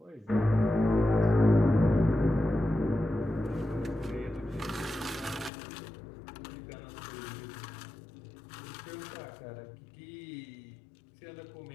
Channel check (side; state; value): right; drops out; at 5.5 s